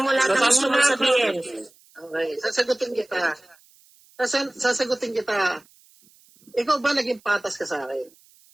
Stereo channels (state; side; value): noise; right; hiss, 30 dB below the sound